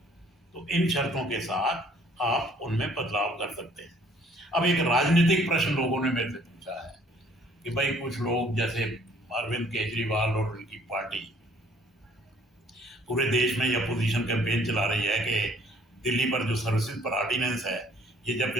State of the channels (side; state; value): both; normal; correlation 0.59